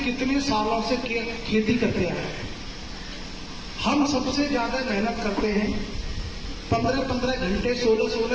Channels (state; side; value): identical; both; correlation 1.00